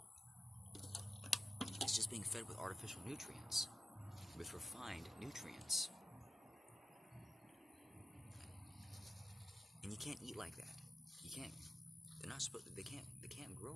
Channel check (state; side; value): normal; both; correlation 0.91